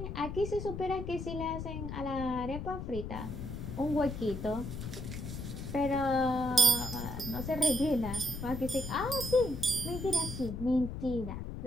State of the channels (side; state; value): left; noise; rumble, 6 dB below the sound